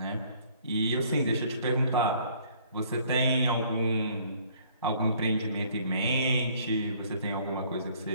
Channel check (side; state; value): both; inverted; correlation -0.59